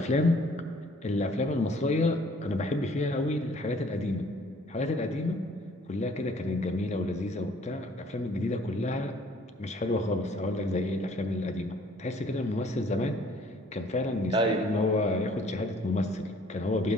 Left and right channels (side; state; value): both; normal; correlation 0.58